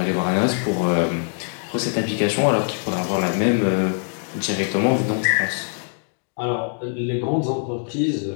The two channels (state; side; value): silent; right; 64 dB below the other